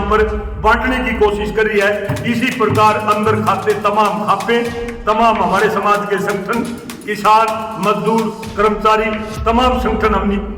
पर बांटने की कोशिश कर रही है, इसी प्रकार अंदर खाते तमाम खापे, तमाम हमारे समाज के संगठन, किसान, मजदूर, कर्मचारी, तमाम संगठन हमने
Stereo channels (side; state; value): both; identical; correlation 1.00